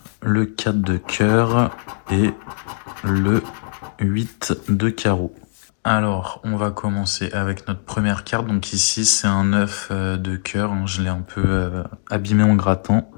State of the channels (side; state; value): right; silent; digital silence